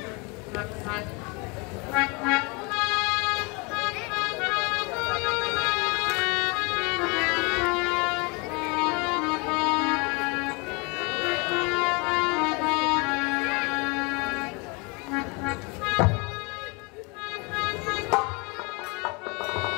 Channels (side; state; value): right; quieter; 29.3 dB